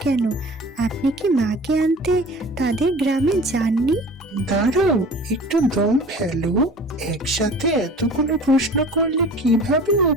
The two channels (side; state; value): both; normal; correlation 0.42